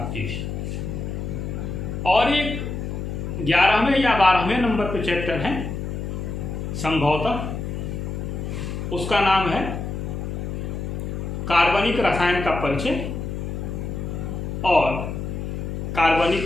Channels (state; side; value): noise; left; hum, 5 dB below the sound